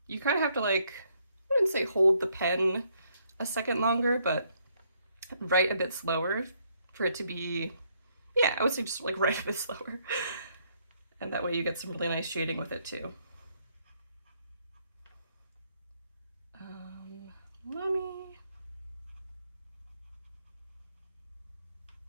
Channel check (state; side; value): inverted; both; correlation -0.71